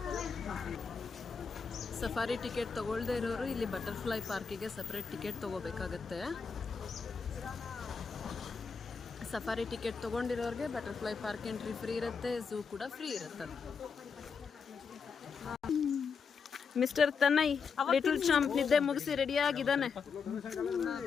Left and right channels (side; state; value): right; quieter; 5.7 dB